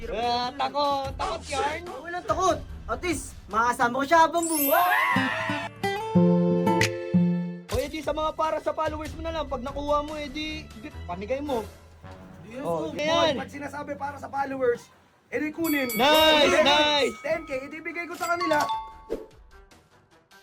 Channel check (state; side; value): identical; both; correlation 1.00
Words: Takot yarn. Walang takot. At least, makasama ko siya habang buhay. O edi sa mga para sa followers mo na lang, pag nakuha mo, edi pamigay mo. Oh, yan. Pag sinasabi para sa followers, edi kunin. Nice, nice. 10K, edi bigay ko sa kanila.